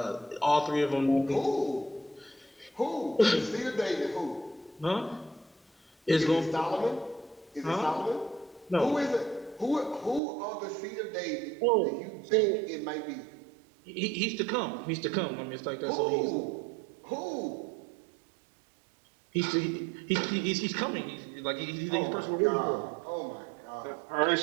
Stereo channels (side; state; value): left; drops out; at 10.2 s